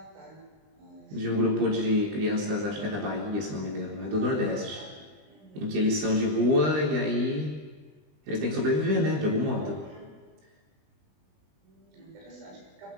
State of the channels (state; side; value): late; left; 20 ms